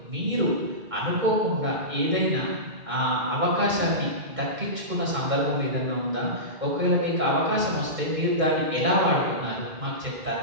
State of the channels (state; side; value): late; left; 2.1 ms